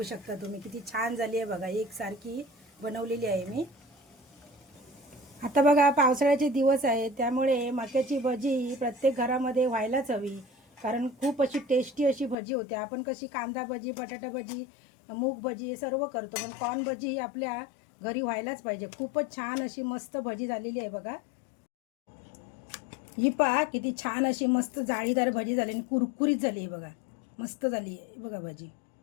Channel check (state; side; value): drops out; right; at 12.4 s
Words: शकता तुम्ही किती छान झाली आहे बघा, एकसारखी बनवलेली आहे मी. आता बघा पावसाळ्याचे दिवस आहेत, त्यामुळे मक्याची भजी प्रत्येक घरामध्ये व्हायलाच हवी, कारण खूप अशी टेस्टी अशी भजी होते. आपण कशी कांदा भजी, बटाटा भजी, मूग भजी हे सर्व करतो, पण कॉर्न भजी ही आपल्या घरी व्हायलाच पाहिजे. खूपच छान अशी मस्त भजी झालेली आहे बघा. ही पहा किती छान अशी मस्त जाळीदार भजी झाली आणि कुरकुरीत झाली आहे बघा, मस्त झाली आहे बघा भजी.